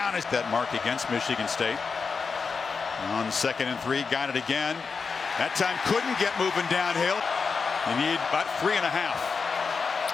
as that mark against Michigan State. On 2nd and 3, got it again. That time couldn't get moving downhill. You need about 3.5.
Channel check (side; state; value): right; quieter; 5.1 dB